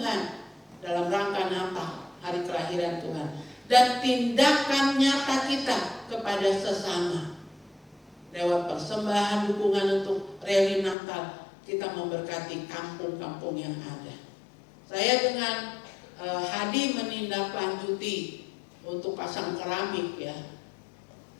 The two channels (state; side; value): drops out; right; at 11.0 s